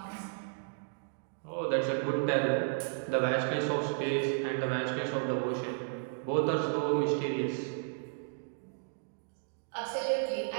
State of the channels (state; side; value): silent; left; digital silence